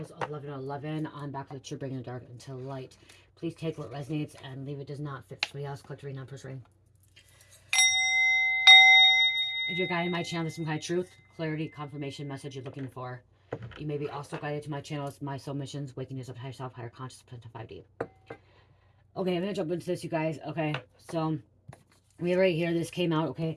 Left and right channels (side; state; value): both; identical; correlation 1.00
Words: 1111. I'm back with you, bringing the dark into light. Please take what resonates and leave it does not fit somebody else. Collect reading, non-first reading. If you're guided my channel to some kind of truth, clarity, confirmation, message you're looking for, you may be also guided to my channels, My Soul Missions, Waking Yourself to Higher Self, Higher Consciousness, to 5D. Okay, I'm going to jump into this, you guys. Okay, so we right here, this came out,